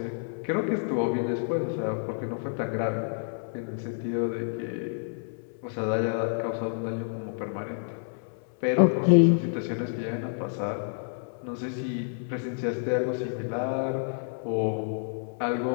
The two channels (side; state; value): right; silent; 59 dB below the other